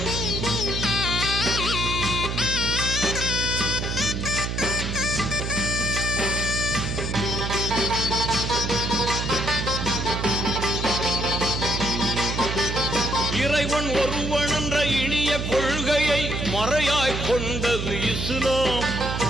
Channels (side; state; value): right; noise; hum, 3 dB below the sound